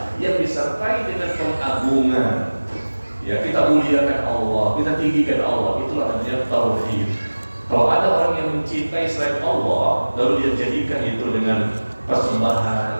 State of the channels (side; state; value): both; inverted; correlation -1.00